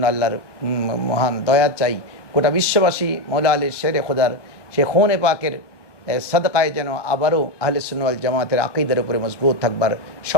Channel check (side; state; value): right; late; 1.1 ms